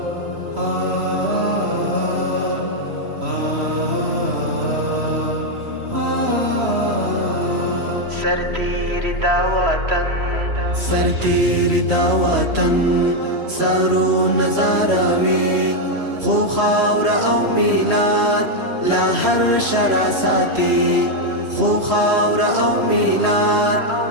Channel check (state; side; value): late; left; 3.0 ms